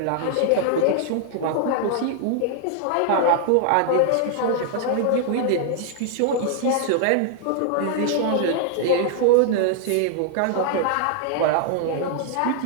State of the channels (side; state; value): both; different; correlation 0.00